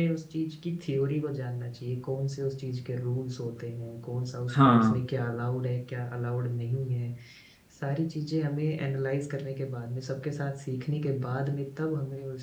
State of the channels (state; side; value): identical; both; correlation 1.00